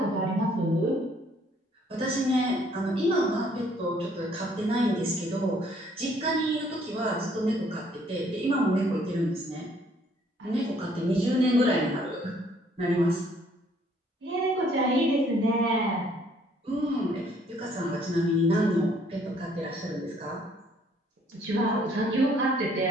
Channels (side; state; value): both; normal; correlation 0.63